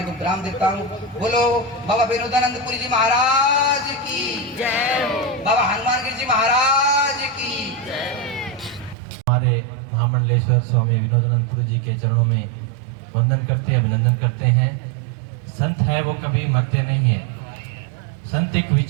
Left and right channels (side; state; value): left; drops out; at 9.0 s